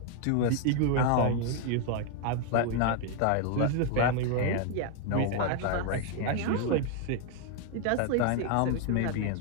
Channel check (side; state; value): both; different; correlation 0.00